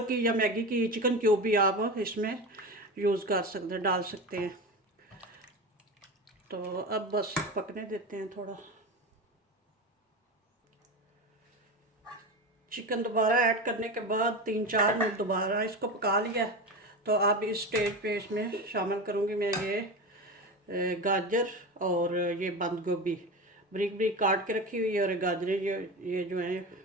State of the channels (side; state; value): both; normal; correlation 0.24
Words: की या मैगी की चिकन क्यूब भी आप इसमें यूज़ कर सकते हैं, डाल सकते हैं। तो अब बस पकने देते हैं थोड़ा। चिकन दोबारा ऐड करने के बाद 3-4 मिनट दोबारा इसको पका लिया। तो अब इस स्टेज पे इसमें शामिल करूँगी मैं ये गाजर और ये बंद गोभी ब्रिक ब्रिक काट के रखी हुई है, और गाजरें ये जो